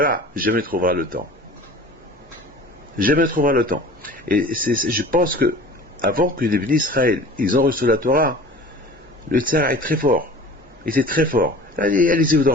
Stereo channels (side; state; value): both; normal; correlation 0.41